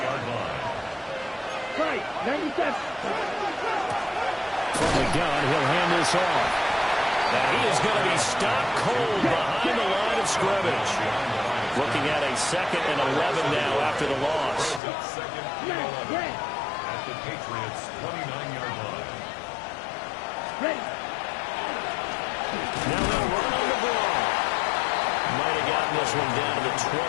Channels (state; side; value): drops out; right; at 14.8 s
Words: line. Right, 97. From the gun, he'll hand this off. And he is going to be stopped cold behind the line of scrimmage. Looking at a 2nd and 11 now after the loss. Second and 11 at the Patriots' 29-yard line. Ready. Now they'll run on the ball. Might have gotten this one down to the